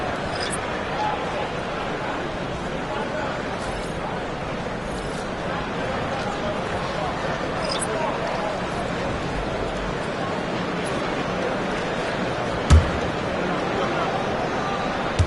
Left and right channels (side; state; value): both; identical; correlation 1.00